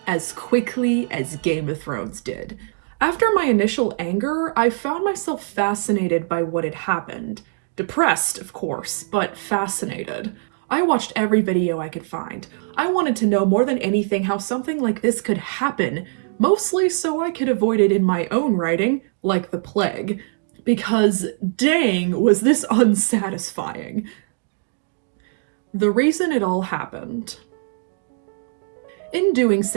as quickly as Game of Thrones did. After my initial anger, I found myself fascinated by what had happened. Depressed, of course, but fascinated. I watched every video I could find. I wanted to know more than anything how something like this could happen, mostly so I could avoid it in my own writing, like the plague. Because dang, was this unsatisfying. The reason it all happened. In doing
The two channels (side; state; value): left; silent; digital silence